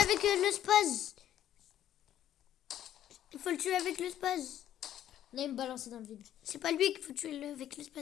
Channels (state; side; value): quieter; right; 11.5 dB